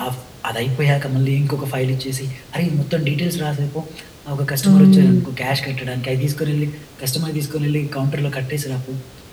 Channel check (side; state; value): both; identical; correlation 1.00